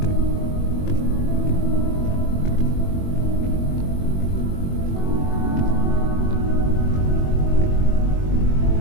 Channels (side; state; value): right; late; 21 ms